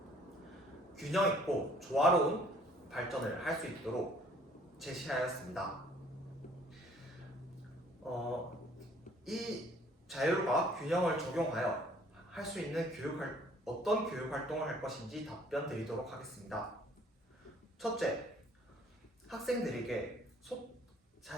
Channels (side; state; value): both; normal; correlation 0.58